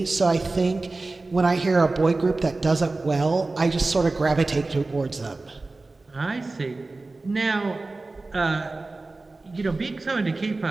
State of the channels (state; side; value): quieter; left; 3.3 dB